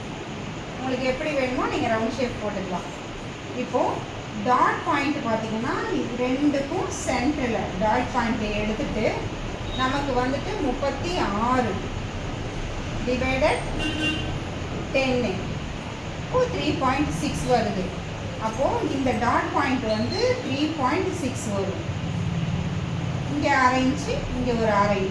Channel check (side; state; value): both; identical; correlation 1.00